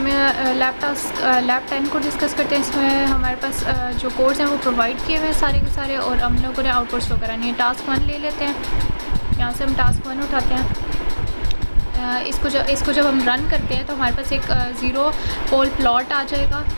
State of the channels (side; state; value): both; inverted; correlation -1.00